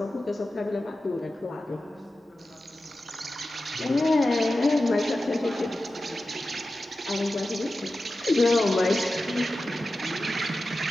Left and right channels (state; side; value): normal; both; correlation 0.93